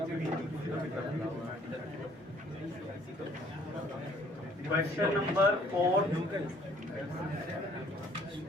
क्वेश्चन नंबर 4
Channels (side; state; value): both; normal; correlation 0.60